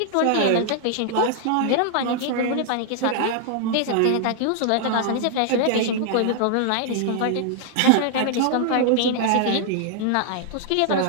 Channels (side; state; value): both; different; correlation 0.00